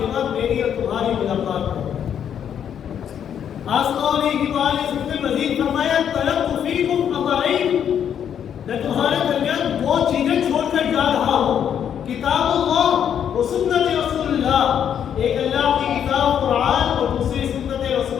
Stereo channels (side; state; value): right; quieter; 8.8 dB